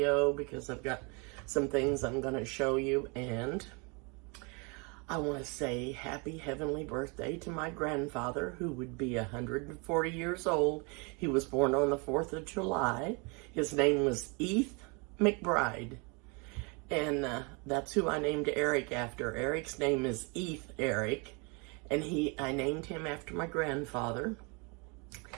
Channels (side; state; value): left; quieter; 31.7 dB